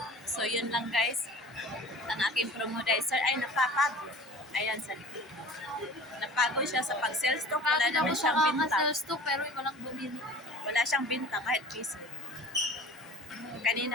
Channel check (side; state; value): both; normal; correlation 0.41